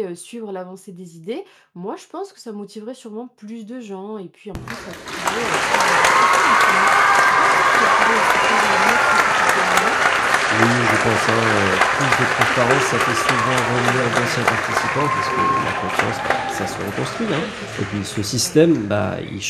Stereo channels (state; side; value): identical; both; correlation 1.00